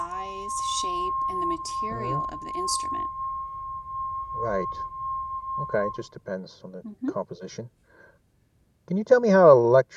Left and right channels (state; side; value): identical; both; correlation 1.00